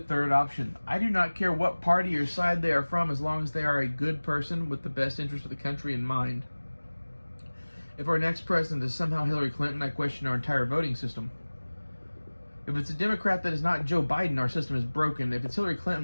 option. I do not care what party or side they are from, as long as they are a good person with the best interest of the country in mind. If our next president is somehow Hillary Clinton, I question our entire voting system. If it's a Democrat that is not Joe Biden, our system is broken. If it's Hillary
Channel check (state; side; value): inverted; both; correlation -1.00